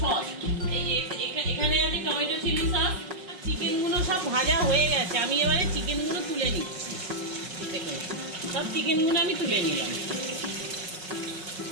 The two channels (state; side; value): late; left; 5.5 ms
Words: এই যে এখানে আছে টমেটো চিলি সস। চিকেনগুলো সব ভাজা হয়ে গেছে, আমি এবারে চিকেনগুলো তুলে নিচ্ছি। দেখুন সব চিকেনগুলো আমি তুলে নিলাম।